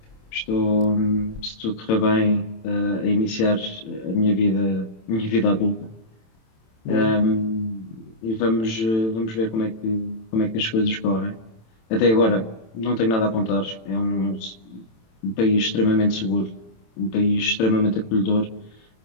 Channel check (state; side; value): late; right; 27 ms